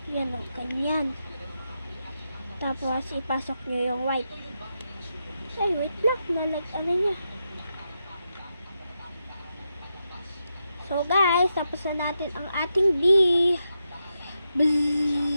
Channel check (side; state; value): both; inverted; correlation -0.86